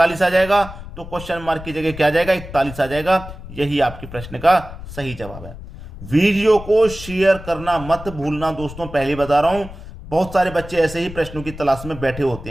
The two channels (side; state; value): left; noise; rumble, 13 dB below the sound